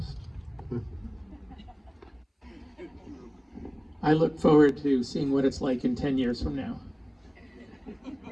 I look forward to seeing what it's like in 10 years from now.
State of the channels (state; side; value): identical; both; correlation 1.00